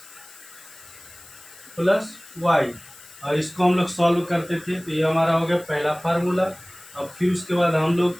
plus y, और इसको हम लोग सॉल्व करते थे। तो ये हमारा हो गया पहला फार्मूला। अब फिर उसके बाद हम लोग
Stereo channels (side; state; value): left; noise; hiss, 20 dB below the sound